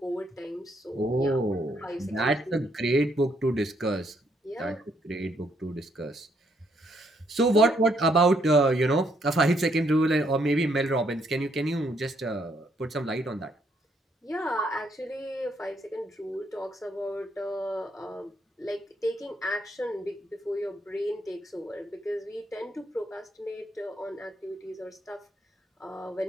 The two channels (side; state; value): both; normal; correlation 0.72